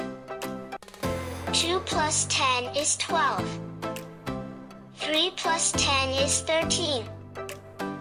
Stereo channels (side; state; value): both; identical; correlation 1.00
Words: 2 plus 10 is 12. 3 plus 10 is 13.